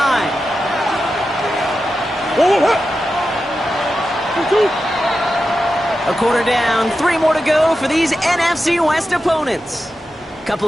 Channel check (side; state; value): both; normal; correlation 0.91